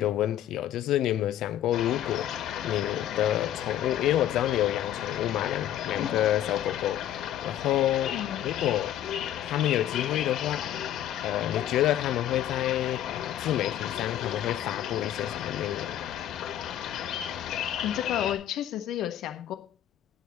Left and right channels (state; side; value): quieter; right; 11.8 dB